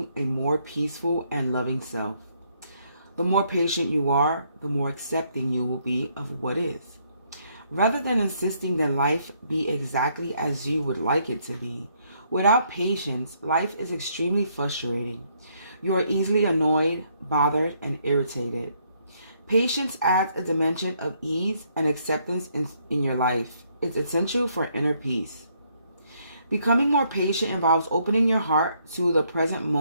a more peaceful and loving self. The more patient you are, the more accepting you will be of what is. Rather than insisting that life be exactly as you would like it to be, without patience, life is extremely frustrating. You are easily annoyed, bothered, and irritated. Patience adds a dimension of ease and acceptance in your life. It's essential for inner peace. Becoming more patient involves opening your heart to the present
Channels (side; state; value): both; inverted; correlation -0.71